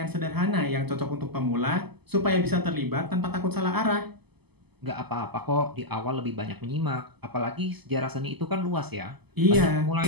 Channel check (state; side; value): late; left; 0.98 ms